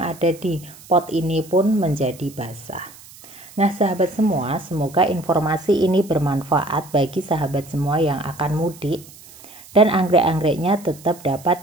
di pot ini pun menjadi basah. Nah sahabat semua, semoga informasi ini bermanfaat bagi sahabat semua yang akan mudik dan anggrek-anggreknya tetap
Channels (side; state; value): right; noise; hiss, 21 dB below the sound